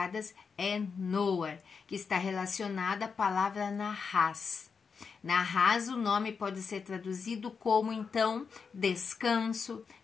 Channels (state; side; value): quieter; right; 5.6 dB